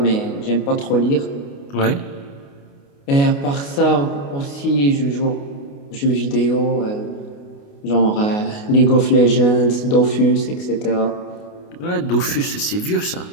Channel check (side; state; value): right; late; 29 ms